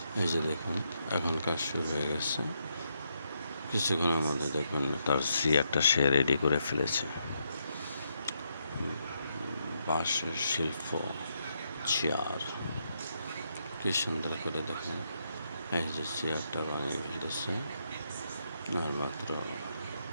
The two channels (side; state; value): both; inverted; correlation -0.79